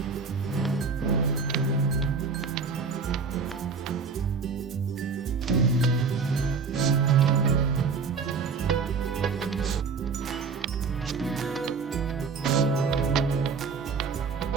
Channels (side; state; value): left; quieter; 5.2 dB